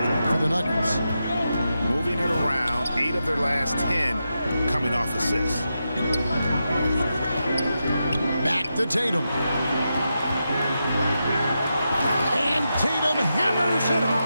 for the Nuggets. Moving it around, 8 of their last 10 coming off assists. Back to Tatum. And Tatum hammers it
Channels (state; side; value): inverted; both; correlation -0.88